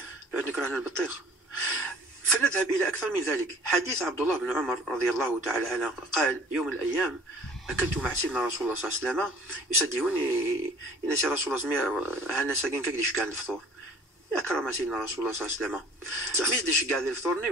لأن كرهنا البطيخ. فنذهب إلى أكثر من ذلك. حديث عبد الله بن عمر رضي الله تعالى عنه قال يوم من الأيام أكلت مع سيدنا رسول الله صلى الله عليه وسلم يسديوني إن سي رسول الله هانا ساكن كاكديش كان الفطور أكرم سيدنا رسول الله صلى الله عليه وسلم ميديش كاع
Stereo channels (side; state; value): both; normal; correlation 0.50